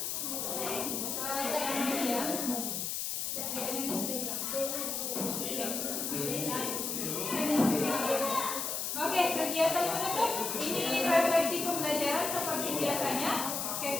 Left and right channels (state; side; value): noise; left; hiss, 2 dB below the sound